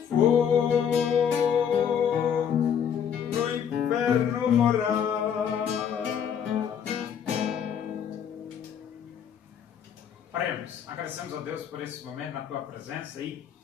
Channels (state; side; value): quieter; right; 8.1 dB